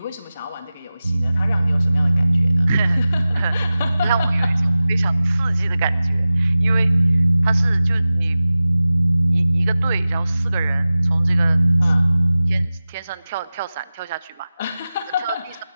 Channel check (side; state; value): both; inverted; correlation -0.96